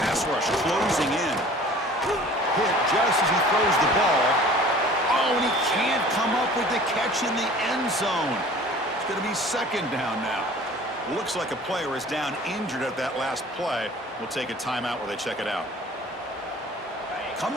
rush closing in. Hit just as he throws the ball. Oh, and he can't come up with the catch in the end zone. It's going to be second down now. Looks like a player is down injured at that last play. We'll take a timeout while they check it out.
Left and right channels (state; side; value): normal; both; correlation 0.47